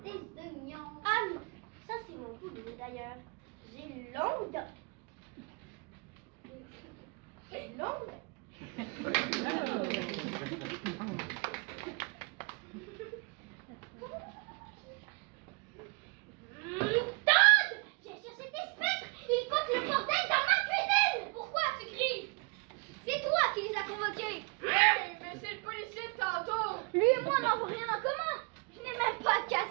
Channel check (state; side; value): quieter; left; 34.0 dB